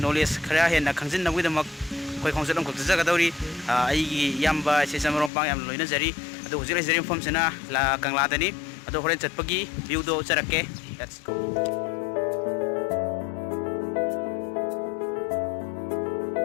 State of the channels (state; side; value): drops out; right; at 5.3 s